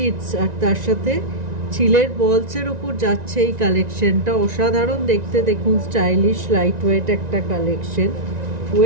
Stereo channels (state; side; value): late; left; 1.9 ms